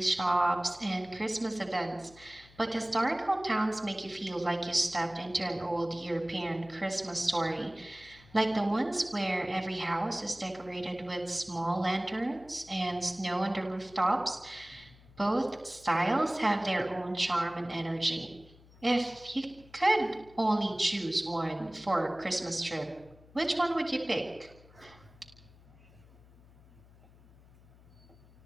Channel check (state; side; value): noise; left; hum, 25 dB below the sound